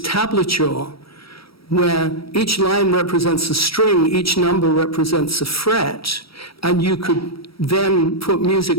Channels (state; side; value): late; right; 0.75 ms